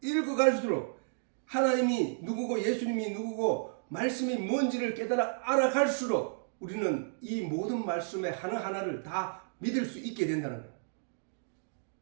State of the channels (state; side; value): silent; left; digital silence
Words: 읽어갈수록 하나님이 누구고 예수님이 누구고 말씀이 뭔지를 깨달아 알아갈수록 우리는 이 모든 말씀의 하나하나를 다 믿을 수 있게 된다는 거예요.